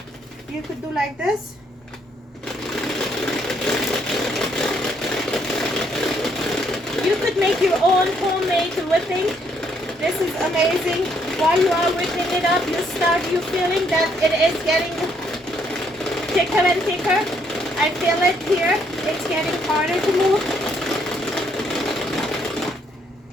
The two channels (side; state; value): both; normal; correlation 0.70